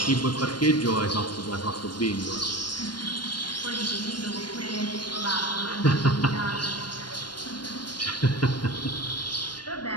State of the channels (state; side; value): late; right; 0.71 ms